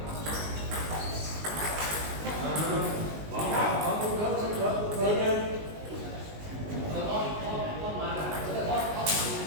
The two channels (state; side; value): late; left; 19 ms